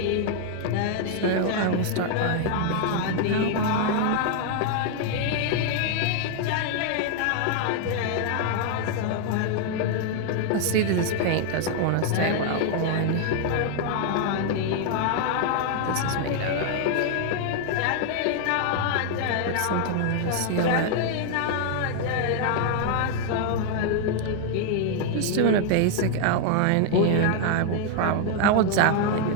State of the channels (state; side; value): different; both; correlation 0.00